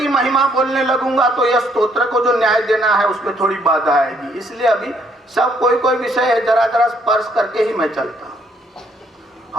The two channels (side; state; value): both; normal; correlation 0.68